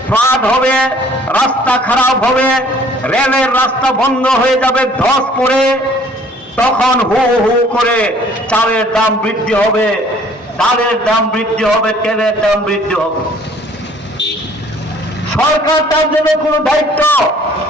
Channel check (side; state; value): both; normal; correlation 0.56